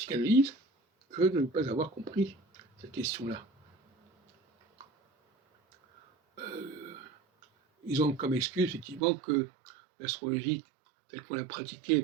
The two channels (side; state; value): left; drops out; at 9.0 s